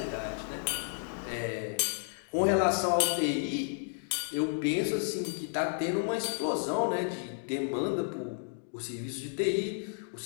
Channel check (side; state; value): right; silent; digital silence